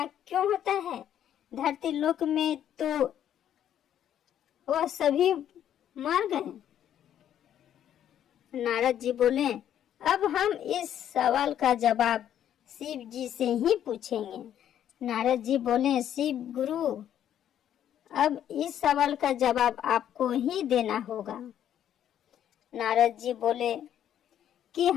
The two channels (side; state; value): right; quieter; 10.4 dB